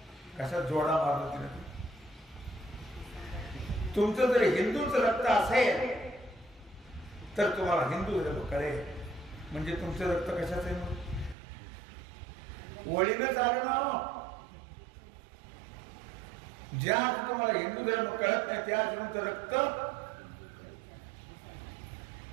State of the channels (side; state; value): left; drops out; at 11.4 s